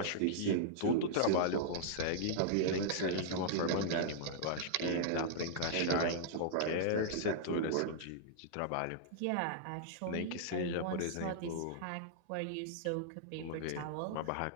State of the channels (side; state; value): both; different; correlation -0.02